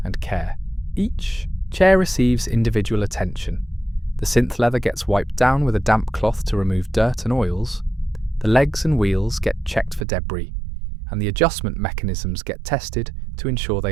and care. Each chair receives individual attention. The synth leather gets wiped down with a damp cloth to remove dirt and oils. The legs and wheels get checked for debris, and the adjustment mechanisms get tested to ensure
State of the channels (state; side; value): drops out; left; at 10.1 s